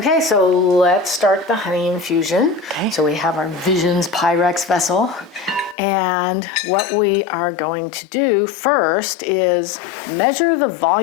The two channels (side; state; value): right; drops out; at 5.8 s